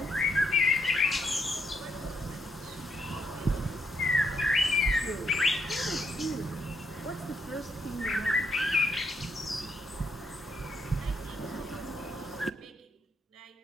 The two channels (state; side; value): normal; both; correlation 0.75